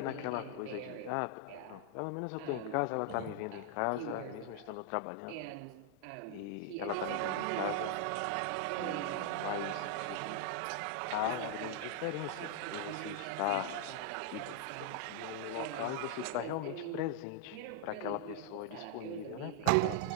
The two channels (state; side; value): different; both; correlation 0.00